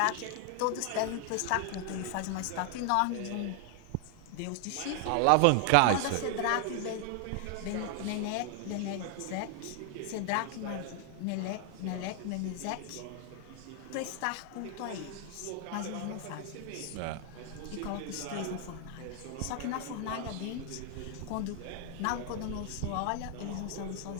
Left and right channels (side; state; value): both; different; correlation 0.00